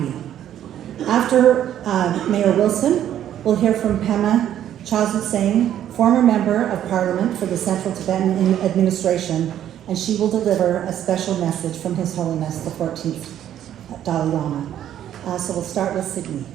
After Mayor Wilson, we'll hear from Pema Chazuseng, former member of Parliament for the Central Tibetan Administration, and she will deliver a special message from His Holiness the 14th Dalai Lama. So we'll start with Sydney.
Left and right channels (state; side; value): quieter; left; 11.0 dB